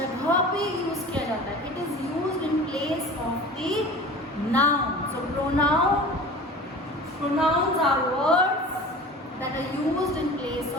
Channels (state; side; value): normal; both; correlation 0.39